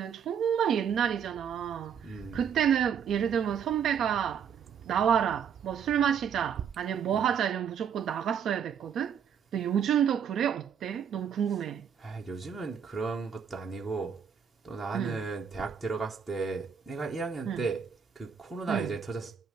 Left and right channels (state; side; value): quieter; left; 7.7 dB